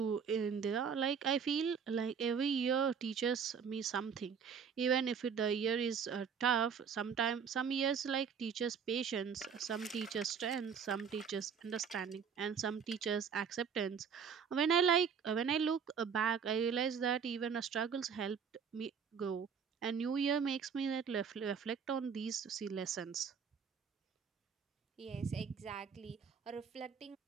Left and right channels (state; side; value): quieter; left; 6.7 dB